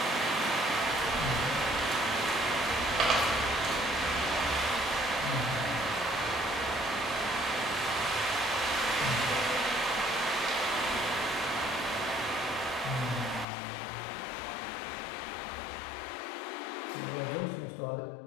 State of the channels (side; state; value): right; drops out; at 13.5 s